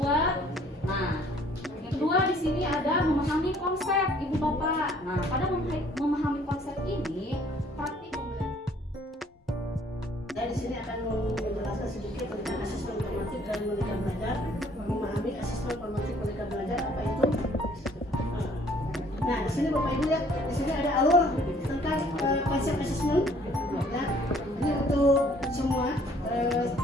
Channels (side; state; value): both; normal; correlation 0.59